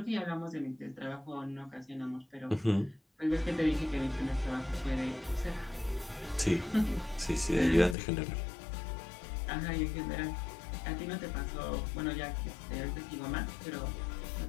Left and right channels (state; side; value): drops out; right; at 8.0 s